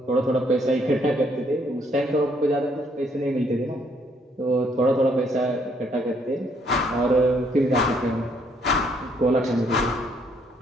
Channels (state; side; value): normal; both; correlation 0.68